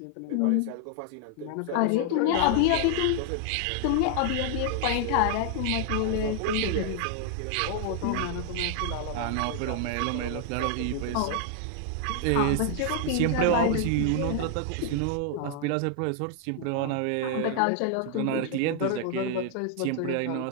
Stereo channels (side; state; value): both; different; correlation 0.00